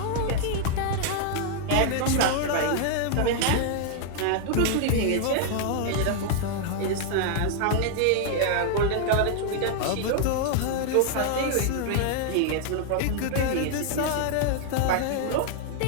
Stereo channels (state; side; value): different; both; correlation 0.00